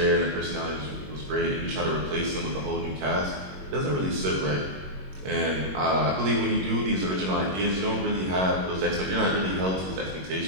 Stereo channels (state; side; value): late; left; 21 ms